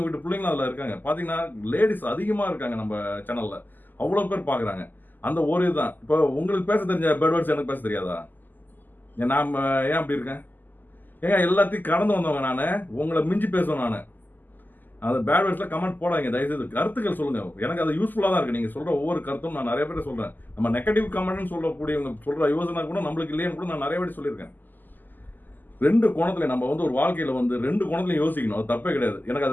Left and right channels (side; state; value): right; late; 0.087 ms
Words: வீட்டு பிள்ளைங்களும் அதில் இருக்காங்க. பார்த்தீங்கன்னா லேடிஸ் அதிகமாக இருக்காங்க நம்ம சேனலில், அவ்வளோ பேர் பார்க்குறாங்க. அந்த ஒரு இதுதான். இப்போ உங்களுக்கு பேச தெரிஞ்ச பேட் வேர்ட்ஸ் எனக்கு பேச தெரியாதா? நான் ஏன் அப்படி இருக்கேன்? ஏங்க எல்லாத்தையும் கடந்து வந்தவங்க நான், உங்களை மிஞ்சி பேசுவேன் நான். அந்த பேட் வேர்ட்ஸில் கமெண்ட் போடாதீங்க தயவுசெய்து. கருத்துக்கள் சொல்லுங்கள். எனக்கு அது யூஸ்ஃபுல்லாக தான் இருக்குது. நீங்கள் சொல்கிற ஒவ்வொரு கருத்தும் நான் நிறைய பேர் சொல்கிறேன். நம்ம நெகட்டிவ் கமெண்ட்னு சொல்லக்கூடியவங்க சொல்கிற யோசனை கூட நம்மளுக்கு இல்லைன்னு கூட நான் நிறைய பேர் சொல்லியிருக்கேன். 2 கோணத்தில் நம்ம ஒரு வாழ்க்கையில் 2 கோணத்துலையும் யோசிக்கணும். அது தப்பே கிடையாது. எனக்கு